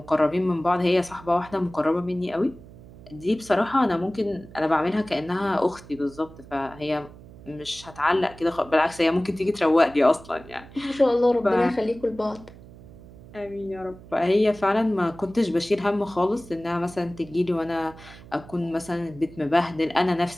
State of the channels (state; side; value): noise; right; hum, 19 dB below the sound